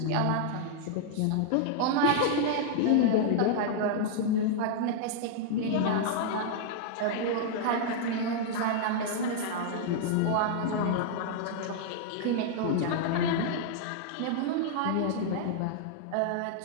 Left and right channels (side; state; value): both; different; correlation -0.01